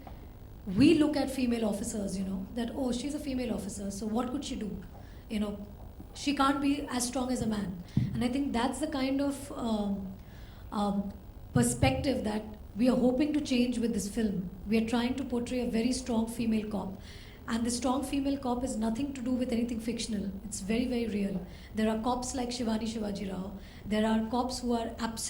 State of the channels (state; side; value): identical; both; correlation 1.00